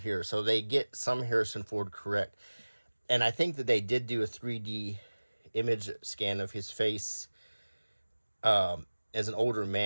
So they get some Harrison Ford correct. And I think that they did do a 3D image scan of his face as an older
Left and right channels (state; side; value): inverted; both; correlation -1.00